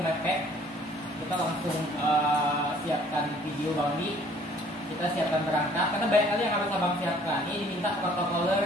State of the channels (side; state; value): both; normal; correlation 0.57